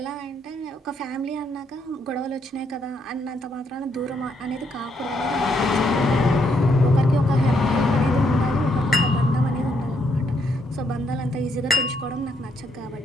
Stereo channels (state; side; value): normal; both; correlation 0.74